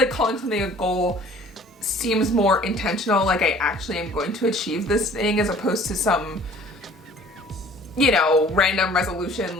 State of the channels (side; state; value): both; normal; correlation 0.51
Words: calling something a goal seems more intentional, like I actually am going to achieve this thing as opposed to some, you know, random resolution